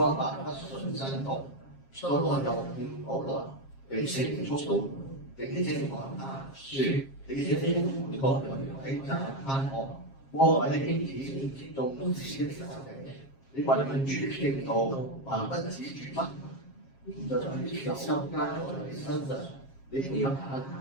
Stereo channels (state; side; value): late; right; 7.4 ms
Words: 法不順真道，所羅又勸保羅，被聖靈觸動，並且講他説：你這瘋狂的鬼詐貪惡，魔鬼的兒子，眾子的仇敵，你為民主正道，還不止住嗎？就在手加在你身上，你配合他，